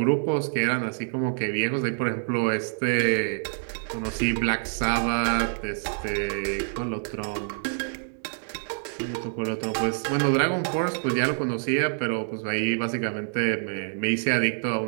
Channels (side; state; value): left; silent; digital silence